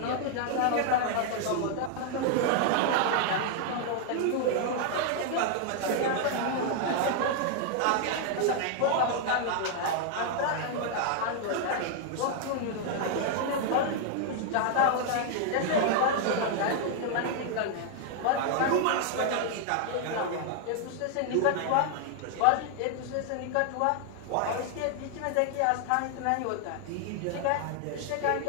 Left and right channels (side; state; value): both; different; correlation 0.00